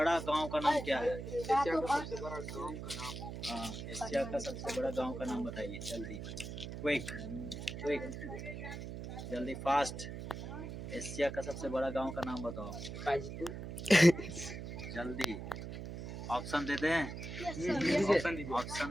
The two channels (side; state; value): right; noise; hum, 8 dB below the sound